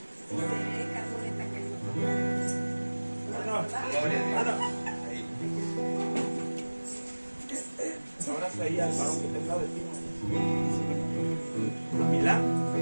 Un abrazo ahí al varón que está al lado de ti. A Milán.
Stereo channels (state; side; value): inverted; both; correlation -1.00